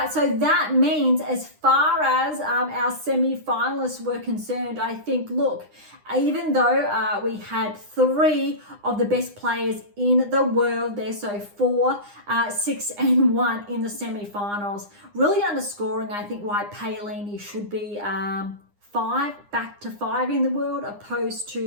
so that means as far as our semi-finalists were concerned, I think, look, even though we had 3 of the best players in the world there, so 4, 6, and 1 in the semi-finals, really underscoring, I think, why Paolini should be 5, back to 5 in the world, opposed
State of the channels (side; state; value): left; late; 9.8 ms